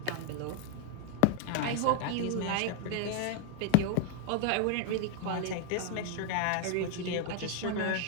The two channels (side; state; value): both; different; correlation -0.01